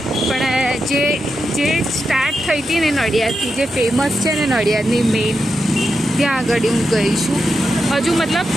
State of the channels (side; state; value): both; normal; correlation 0.87